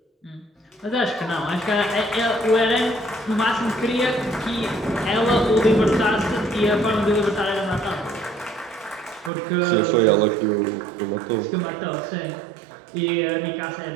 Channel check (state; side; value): drops out; left; at 9.3 s